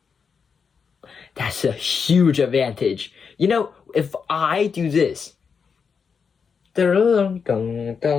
That's a huge advantage. You know, if I do this, I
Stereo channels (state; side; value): quieter; right; 6.0 dB